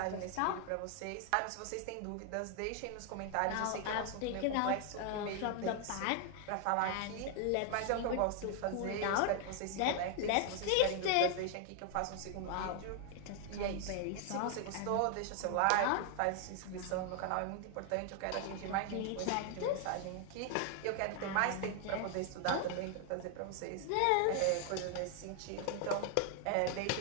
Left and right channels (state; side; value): different; both; correlation 0.00